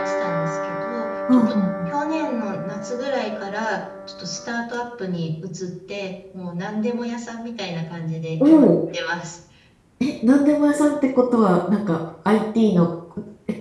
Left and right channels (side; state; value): both; identical; correlation 1.00